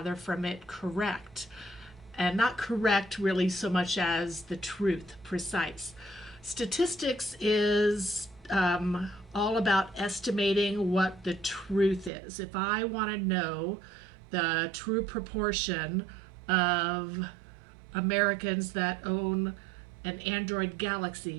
from it correct? And not correct really so much as the truth, precise. Statistics is all about estimating what the truth is. If I want to know the true proportion of Americans that own an Android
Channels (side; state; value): left; drops out; at 12.1 s